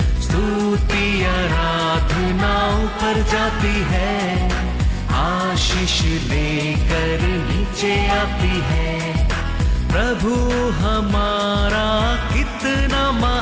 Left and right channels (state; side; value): identical; both; correlation 1.00